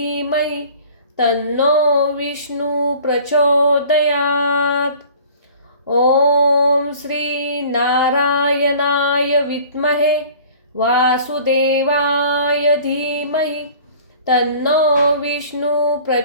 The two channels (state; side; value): inverted; both; correlation -0.48